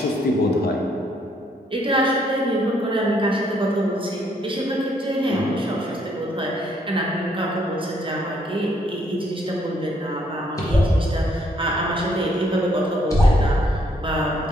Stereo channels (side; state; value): both; normal; correlation 0.69